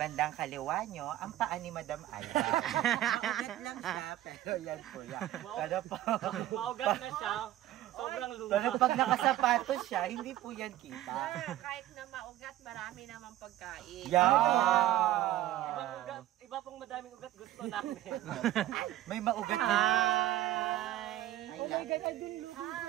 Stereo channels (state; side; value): quieter; left; 14.1 dB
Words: kaliwa nyo, ang paa ni Madam Alba. Maugat lang siya, pero yan po yan. Maugat na siya. Sobrang luma. Pero pag nakasapatos siya, hindi po yan kita. Sir, kahit na maugat, marami naman pagkain. Iba pong madaming ugat gusto namin. May maugat na. Hi! Oh my God, I didn't look